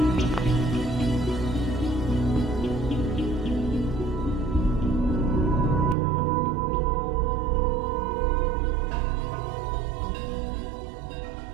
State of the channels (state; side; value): drops out; left; at 6.0 s